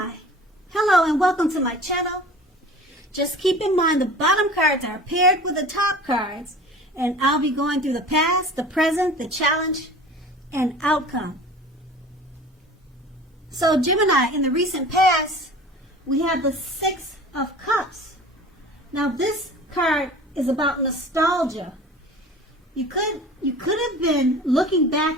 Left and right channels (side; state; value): both; normal; correlation 0.41